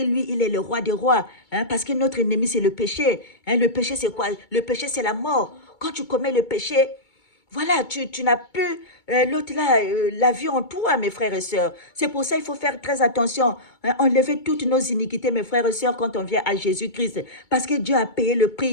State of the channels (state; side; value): late; right; 2.2 ms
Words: lui, il est le roi des rois. Hein, parce que notre ennemi, c'est le péché. Hein, le péché, c'est quoi? Le péché, c'est la mort. Quand tu commets le péché, voilà, tu n'as plus l'autre là, la vie en toi, mes frères et sœurs. C'est pour ça qu'il faut faire très attention. Hein, enlever toutes nos iniquités, mes frères et sœurs, quand on vient à Jésus-Christ. Parce que Dieu a payé le